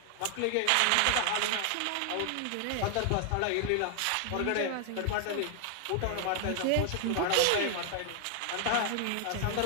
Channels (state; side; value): different; both; correlation 0.00